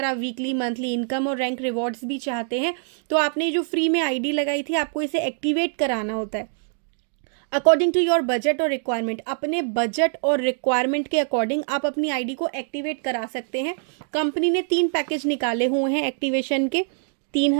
आप वीकली, मंथली इनकम और रैंक रिवॉर्ड्स भी चाहते हैं तो आपने जो फ्री में ID लगाई थी आपको इसे एक्टिवेट कराना होता है अकॉर्डिंग टू योर बजट और रिक्वायरमेंट। अपने बजट और रिक्वायरमेंट के अकॉर्डिंग आप अपनी ID को एक्टिवेट करा सकते हैं। कंपनी ने 3 पैकेज निकाले हुए हैं एक्टिवेशन के,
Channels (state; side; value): silent; left; digital silence